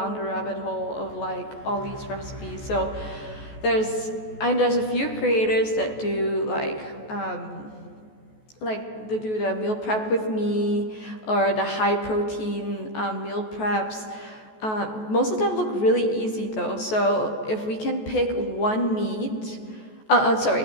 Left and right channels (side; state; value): right; late; 14 ms